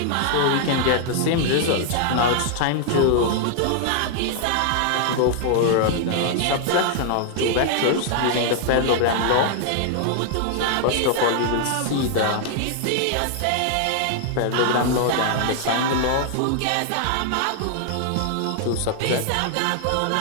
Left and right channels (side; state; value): both; different; correlation 0.00